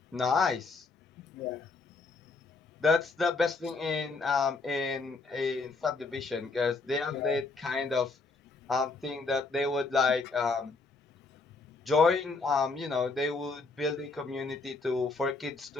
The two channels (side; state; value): right; quieter; 4.0 dB